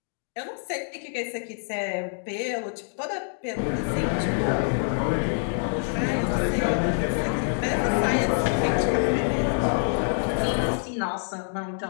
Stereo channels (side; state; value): right; silent; digital silence